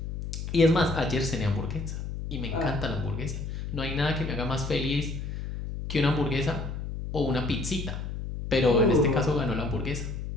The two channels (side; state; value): left; noise; hum, 6 dB below the sound